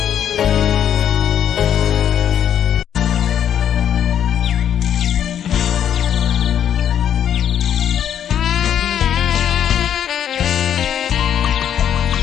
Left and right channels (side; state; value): right; quieter; 9.6 dB